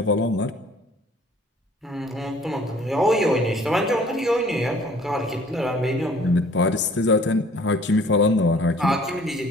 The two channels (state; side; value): normal; both; correlation 0.54